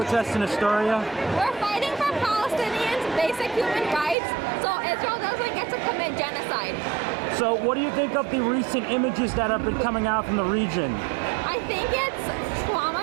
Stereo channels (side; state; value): left; drops out; at 4.2 s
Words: in Astoria? We're fighting for Palestinians' basic human rights, so Israel doesn't get to commit genocide. So what do you think of the recent images that have been coming out from the region? I think it's